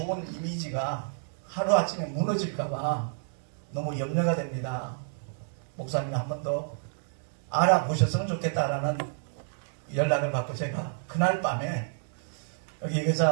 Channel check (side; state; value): left; silent; digital silence